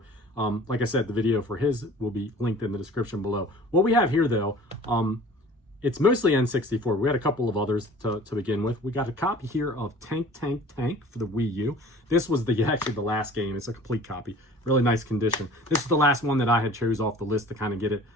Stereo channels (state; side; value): normal; both; correlation 0.46